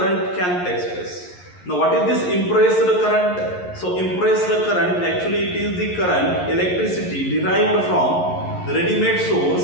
can take place. Now what is this impressed current? So impressed current, actually it is the current, electricity derived from the ready-made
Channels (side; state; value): right; late; 11 ms